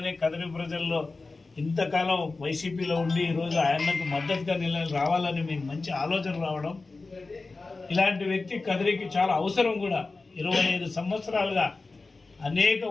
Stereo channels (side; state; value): right; quieter; 3.7 dB